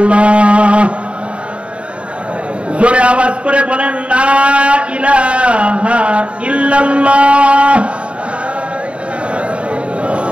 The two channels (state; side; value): late; left; 0.060 ms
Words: জোরে আওয়াজ করে বলেন, লা ইলাহা ইল্লাল্লাহ।